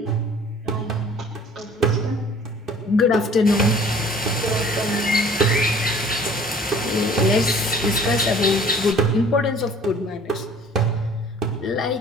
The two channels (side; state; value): both; normal; correlation 0.51